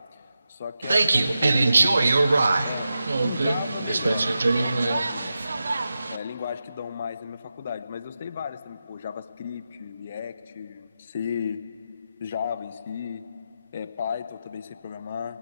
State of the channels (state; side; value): inverted; both; correlation -0.90